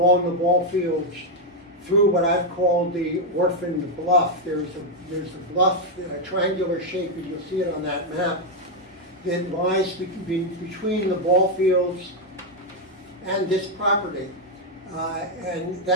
the ball fields through what I've called the orphaned bluff. There's a bluff, a triangular shape, as you'll see it on that map, that lies between the ball fields and this property. And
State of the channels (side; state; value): both; normal; correlation 0.01